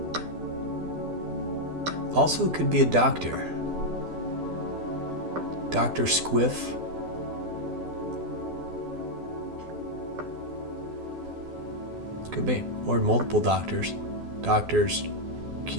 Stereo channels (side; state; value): left; late; 12 ms